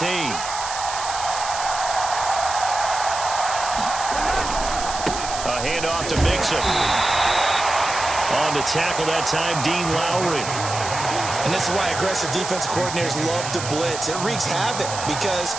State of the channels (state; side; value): noise; right; hiss, 7 dB below the sound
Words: Handoff to Mixon. On the tackle that time, Dean Lowry. And this is why aggressive defensive coordinators love to blitz. It wreaks havoc because